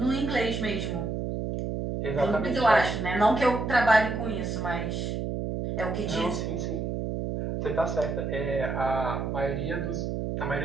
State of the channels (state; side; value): noise; right; hum, 2 dB below the sound